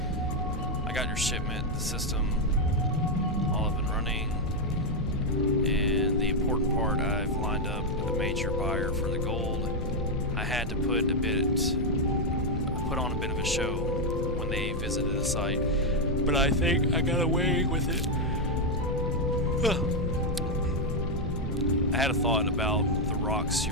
I got your shipment, the system, all up and running. And the important part, I've lined up a major buyer for the gold. I had to put on a bit of a show when they visited the site, but I think I got away with it. I had a thought about the rocks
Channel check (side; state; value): both; normal; correlation 0.02